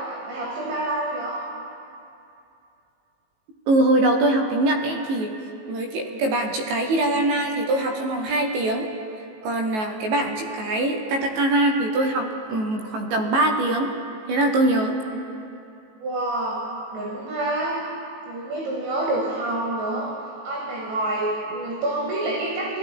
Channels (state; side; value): late; left; 18 ms